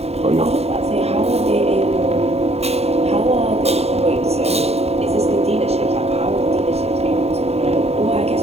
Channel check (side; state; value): left; late; 0.30 ms